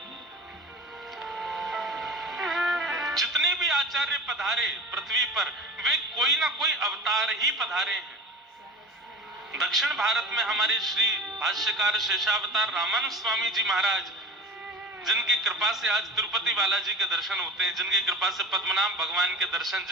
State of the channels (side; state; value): both; normal; correlation 0.37